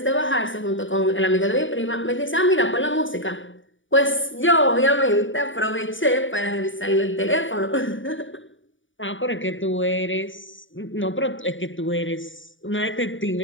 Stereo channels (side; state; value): right; late; 0.56 ms